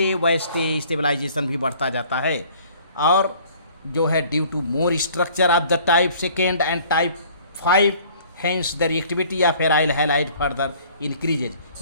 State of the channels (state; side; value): inverted; both; correlation -0.53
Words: वैसे स्टेबलाइजेशन भी बढ़ता जाता है, और जो है due to more structure of the type second and type 5 hence the reactivity of aryl halide further